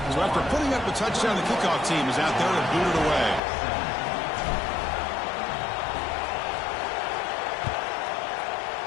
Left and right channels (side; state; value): right; drops out; at 3.4 s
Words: So after putting up the touchdown, the kickoff team is out there to boot it away.